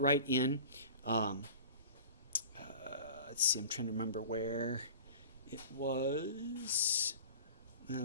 in. Um, let's see, I'm trying to remember where it was.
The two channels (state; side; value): inverted; both; correlation -0.40